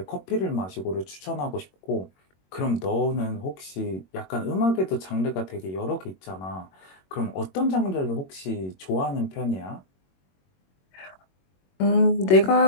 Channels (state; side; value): late; right; 21 ms